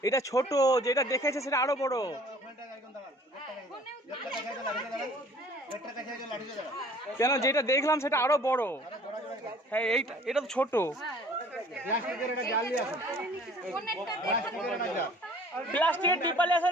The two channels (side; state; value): both; normal; correlation 0.52